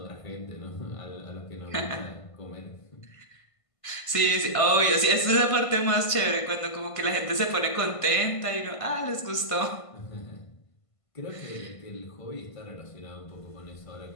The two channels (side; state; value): right; late; 1.5 ms